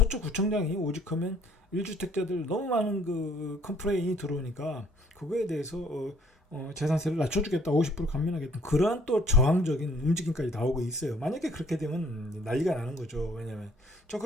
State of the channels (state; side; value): normal; both; correlation 0.61